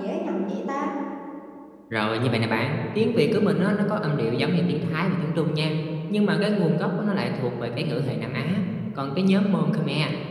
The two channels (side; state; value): both; identical; correlation 1.00